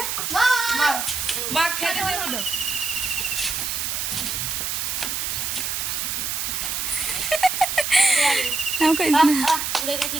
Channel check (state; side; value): noise; right; hiss, 2 dB below the sound